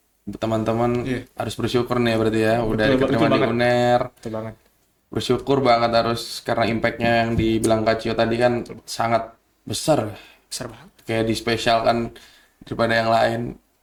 Teman-teman Iya. harus bersyukur nih ya berarti ya. Udah Betul, diterima betul di banget. UNER. Betul banget. Bersyukur banget harus karena impactnya yang dibilang Kak Cio tadi kan sangat besar. Besar banget. Kayak dispesialkan daripada yang lain.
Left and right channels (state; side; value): identical; both; correlation 1.00